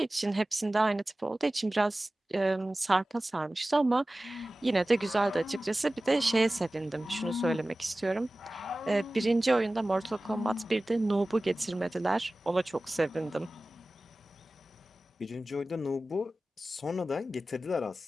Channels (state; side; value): normal; both; correlation 0.97